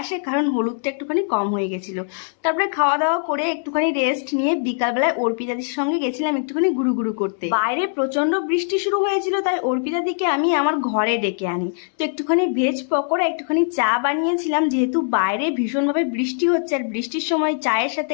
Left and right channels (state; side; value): silent; right; 65 dB below the other